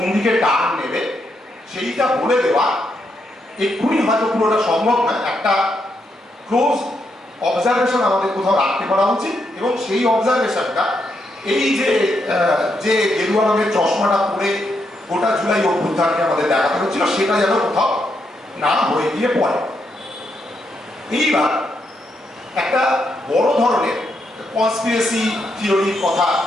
দিকে টার্ন নেবে সেইটা বলে দেওয়া এক্ষুনি হয়তো পুরোটা সম্ভব না। একটা ক্লোজ অবজারভেশন আমাদের কোথাও রাখতে পারা উচিত, এবং সেই অবজারভেশনটা এই যে গেরুয়া রঙের চশমাটা পরে গোটা জুলাই অভ্যুত্থানকে আমাদের দেখাতে হচ্ছিল, সেটা যেন কোথাও না হয়ে গিয়ে পড়ে। এইবার একটা বড় ধরনের কনস্পিরেসি থিওরির কথা,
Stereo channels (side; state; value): both; normal; correlation 0.80